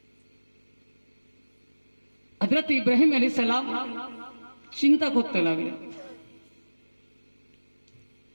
হযরত ইব্রাহিম আলাইহিস সালাম চিন্তা করতে লাগলেন,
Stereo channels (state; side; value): inverted; both; correlation -1.00